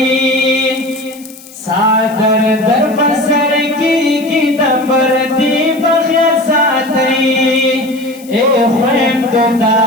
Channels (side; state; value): left; noise; hiss, 21 dB below the sound